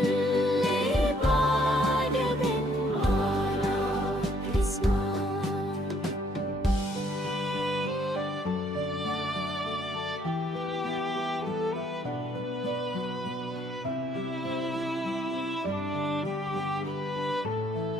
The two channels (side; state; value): both; normal; correlation 0.66